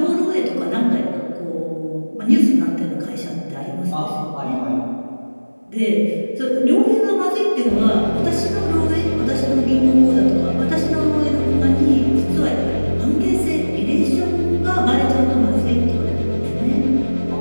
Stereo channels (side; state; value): both; inverted; correlation -1.00